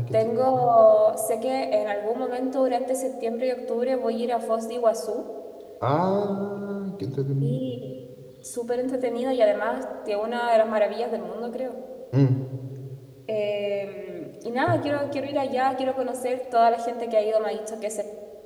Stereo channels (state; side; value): identical; both; correlation 1.00